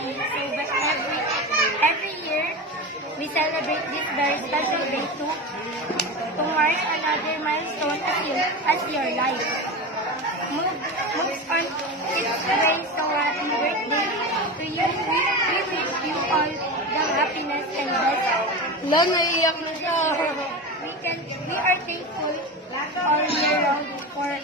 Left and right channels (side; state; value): both; normal; correlation 0.24